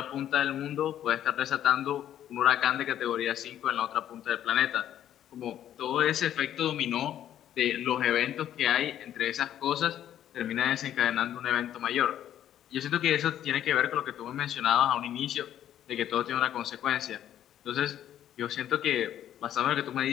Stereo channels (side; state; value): right; quieter; 11.1 dB